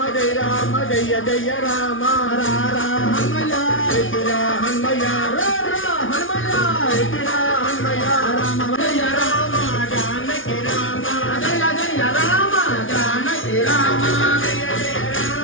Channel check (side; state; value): right; late; 0.57 ms